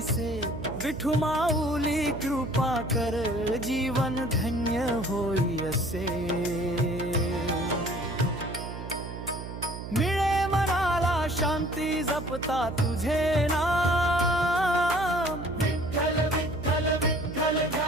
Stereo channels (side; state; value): right; noise; hum, 9 dB below the sound